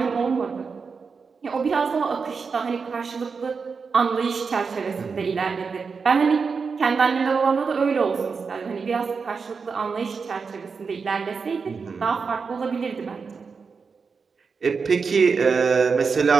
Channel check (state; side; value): quieter; left; 5.2 dB